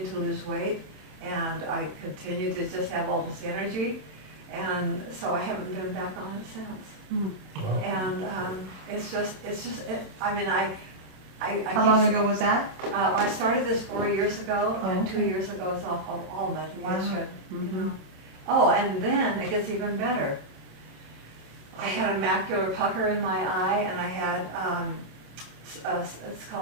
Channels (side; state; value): left; late; 27 ms